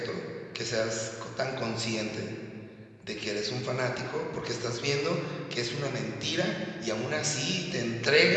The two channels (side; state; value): both; identical; correlation 1.00